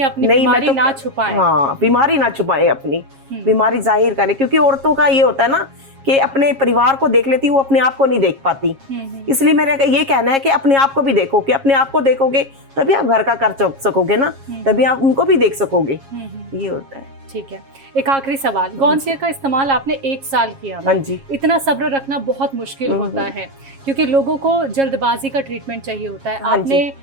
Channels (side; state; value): left; late; 7.4 ms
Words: अपनी नहीं, बीमारी मैं तो- ना छुपाएं। हाँ, बीमारी ना छुपाए, अपनी बीमारी जाहिर करें, क्योंकि औरतों का ये होता है ना कि अपने परिवार को देख लेती, वो अपने आप को नहीं देख पाती। इसलिए मेरा ये कहना है कि अपने आप को भी देखो, कि अपने आप को देखोगे तभी आप घर का कर सकोगे ना, तभी आप उनको भी देख सकोगे। ये होता है। ठीक है, एक आखिरी सवाल, गौनसिया का इस्तेमाल आपने 1 साल किया। हाँ जी। इतना सब्र रखना बहुत मुश्किल होता है क्योंकि लोगों को जल्दबाजी का ट्रीटमेंट चाहिए होता है। हाँ आपने